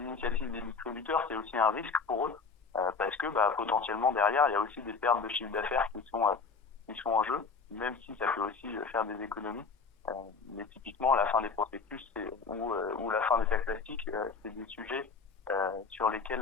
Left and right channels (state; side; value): quieter; right; 4.9 dB